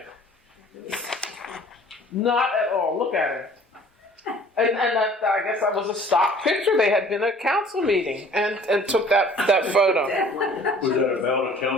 Not at all. Look at it. And that, I guess that was a stock picture. They had been at a council meeting and took that photo. Was that about a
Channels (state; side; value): normal; both; correlation 0.51